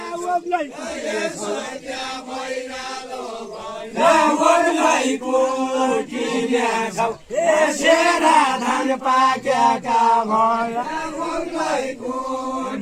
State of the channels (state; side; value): identical; both; correlation 1.00